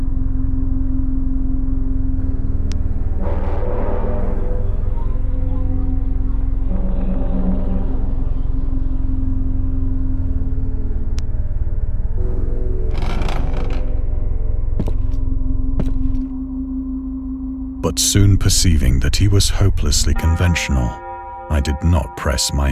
But soon perceiving that he was hopelessly conventional, I did not press my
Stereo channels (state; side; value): identical; both; correlation 1.00